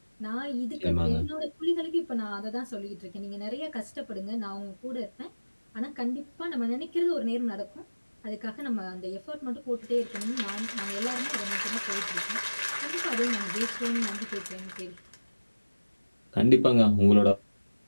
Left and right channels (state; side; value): inverted; both; correlation -1.00